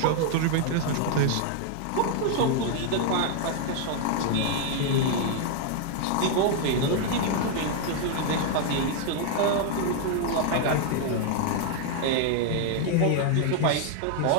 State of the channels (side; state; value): both; different; correlation 0.00